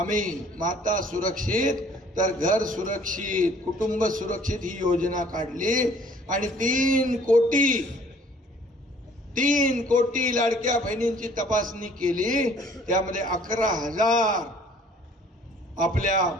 माता सुरक्षित तर घर सुरक्षित, कुटुंब सुरक्षित ही योजना काढली आणि 3 कोटी लाडक्या बहिणींची तपासणी केली। त्यामध्ये 11,000 आपल्या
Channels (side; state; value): both; normal; correlation 0.56